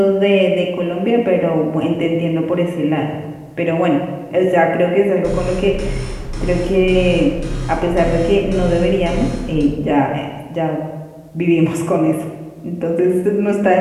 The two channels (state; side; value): identical; both; correlation 1.00